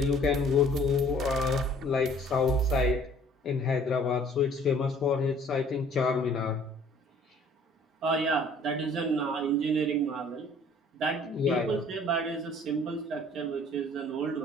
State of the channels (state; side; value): normal; both; correlation 0.55